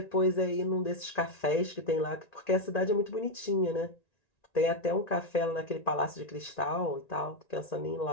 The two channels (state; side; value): late; right; 1.9 ms